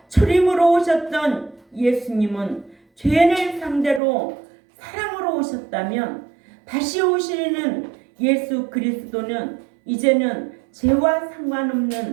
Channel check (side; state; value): left; drops out; at 4.0 s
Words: 초림으로 오셨던 예수님은 죄인을 상대로 사랑으로 오셨다면 다시 오시는 예수 그리스도는 이제는 죄와